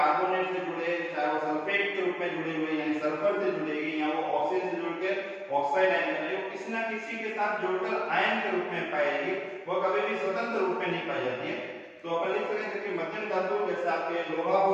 से जुड़े, चाहे वो सल्फेट के रूप में जुड़े हुए यानी सल्फर से जुड़ेगी, या वो ऑक्सीजन से जुड़कर ऑक्साइड आयन बनेगी, किसी ना किसी के साथ जुड़कर आयन के रूप में पाएगी, वो कभी भी स्वतंत्र रूप में नहीं पाई जाती है। तो अपन लिख सकते हैं कि मध्यम धातु जैसे आपके लोहा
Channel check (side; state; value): both; identical; correlation 1.00